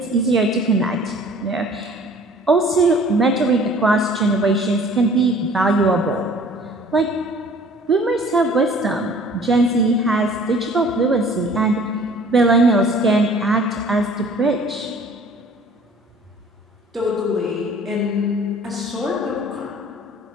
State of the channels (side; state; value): both; normal; correlation 0.51